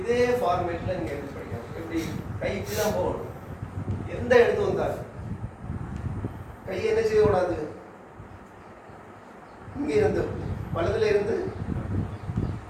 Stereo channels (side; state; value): both; identical; correlation 1.00